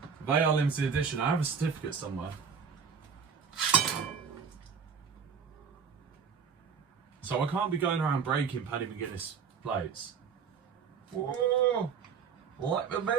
they are limited edition. I have a certificate somewhere. So I can't be going around breaking Paddy McGuinness plates. Whoa! Like the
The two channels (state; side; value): quieter; left; 6.3 dB